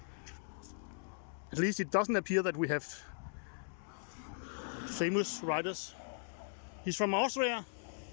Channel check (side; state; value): right; silent; digital silence